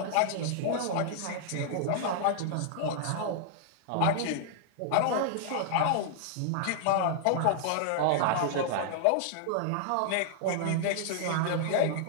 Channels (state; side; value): different; both; correlation -0.01